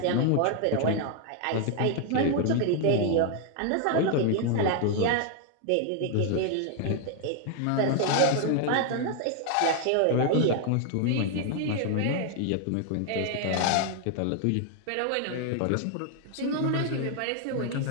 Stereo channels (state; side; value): different; both; correlation 0.00